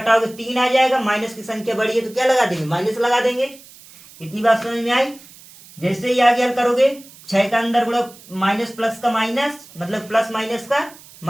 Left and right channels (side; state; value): right; noise; hiss, 22 dB below the sound